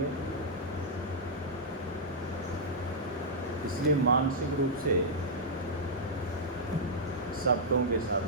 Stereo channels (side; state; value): both; normal; correlation -0.08